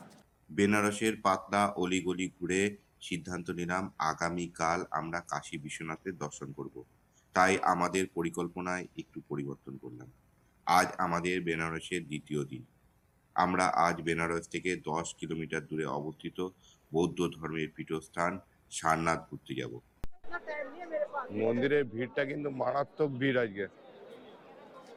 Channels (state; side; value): identical; both; correlation 1.00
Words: বেনারসের পাতলা অলিগলি ঘুরে সিদ্ধান্ত নিলাম আগামীকাল আমরা কাশী বিশ্বনাথের দর্শন করব। তাই আমাদের পরিকল্পনায় একটু পরিবর্তন করলাম। আজ আমাদের বেনারসের দ্বিতীয় দিন। আমরা আজ বেনারস থেকে 10 কিলোমিটার দূরে অবস্থিত বৌদ্ধ ধর্মের পীঠস্থান সারনাথ ঘুরতে যাব। মন্দিরের ভিড়টা কিন্তু মারাত্মক ভিড় আজকে,